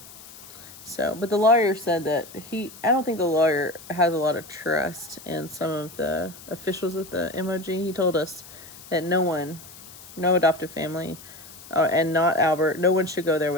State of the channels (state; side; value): noise; left; hiss, 18 dB below the sound